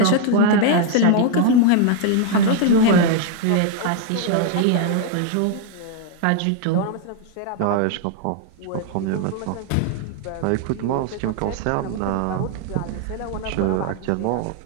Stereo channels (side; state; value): both; different; correlation 0.00